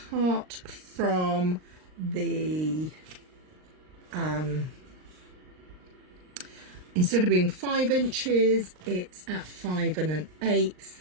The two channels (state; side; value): late; left; 39 ms